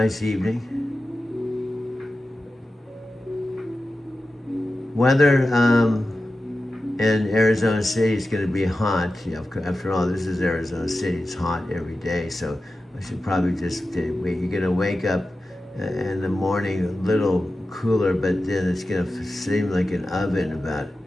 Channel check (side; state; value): both; normal; correlation 0.93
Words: evening. Weather in Arizona City is going to be hot. After all, this is Arizona City. It's hot every day, so I should probably just wait. You're going to wake up in the morning a little cooler, but then it's going to seem like an oven about